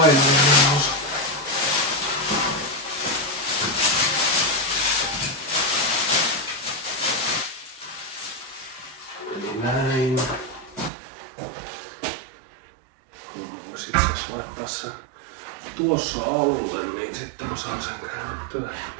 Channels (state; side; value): drops out; left; at 10.9 s